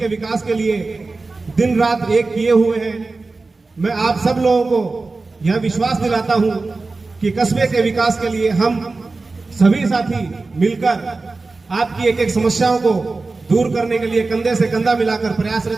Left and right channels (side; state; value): left; quieter; 3.7 dB